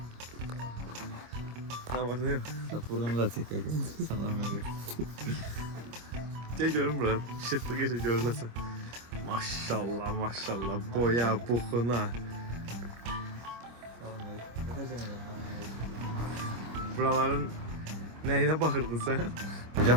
Ne var ne yok? Burnumu da çek kanka. Salam veriyorum. Gel görün bura. Şıklı gece görünesin. Maşallah maşallah. Boya, buxuna. Salam veriyorum. Yapacağım ben. Buraların neyine bakırdın sen?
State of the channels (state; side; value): late; left; 25 ms